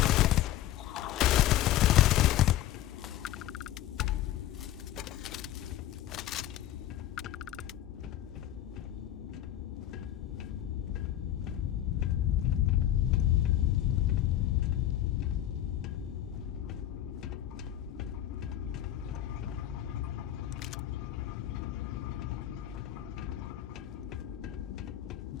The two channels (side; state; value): right; quieter; 12.7 dB